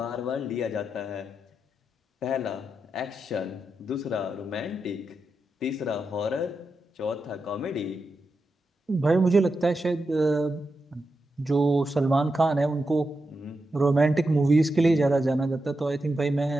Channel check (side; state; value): both; normal; correlation 0.88